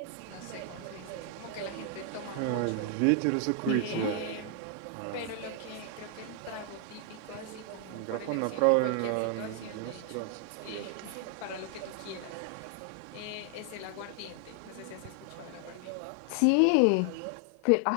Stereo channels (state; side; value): different; both; correlation 0.00